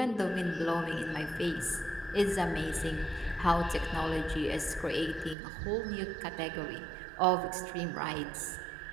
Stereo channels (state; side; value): drops out; left; at 5.4 s